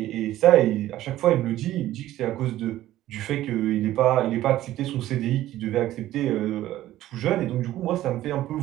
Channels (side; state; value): left; quieter; 14.3 dB